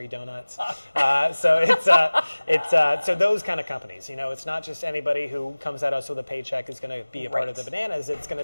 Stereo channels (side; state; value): both; inverted; correlation -1.00